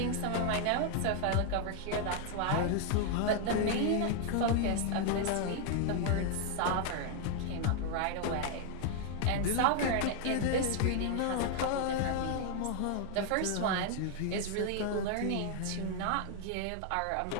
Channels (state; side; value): different; both; correlation 0.00